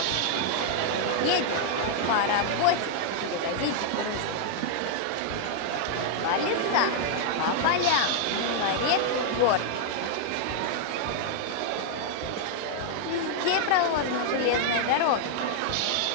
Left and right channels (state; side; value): different; both; correlation -0.01